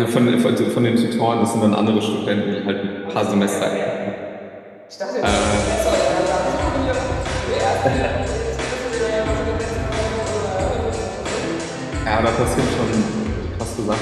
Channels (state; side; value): identical; both; correlation 1.00